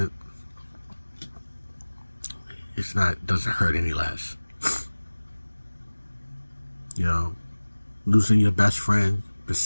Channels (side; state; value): both; inverted; correlation -1.00